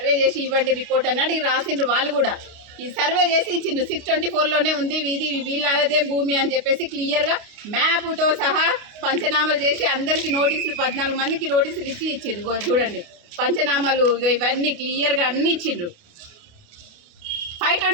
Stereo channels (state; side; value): late; left; 29 ms